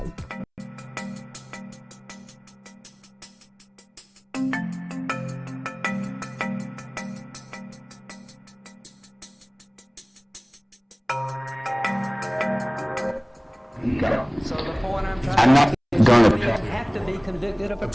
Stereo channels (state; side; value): identical; both; correlation 1.00